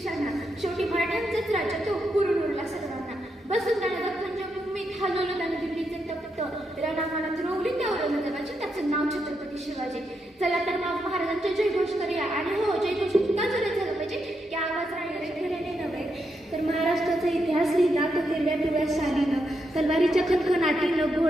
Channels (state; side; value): normal; both; correlation 0.82